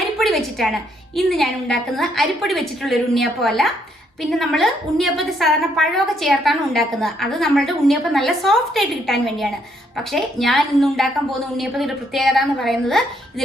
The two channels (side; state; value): both; normal; correlation 0.72